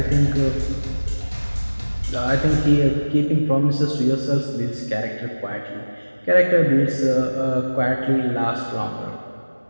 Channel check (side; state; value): both; inverted; correlation -1.00